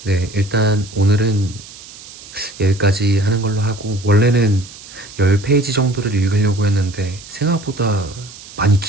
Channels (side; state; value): right; noise; hiss, 17 dB below the sound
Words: 네, 일단 오늘은 여기까지 하는 걸로 하고, 원래는 10페이지 정도를 읽으려고 했는데 생각보다 많이